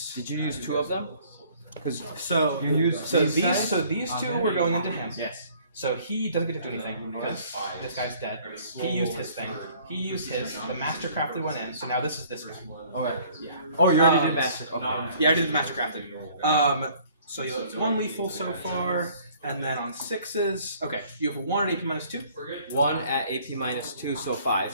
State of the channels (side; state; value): both; inverted; correlation -0.57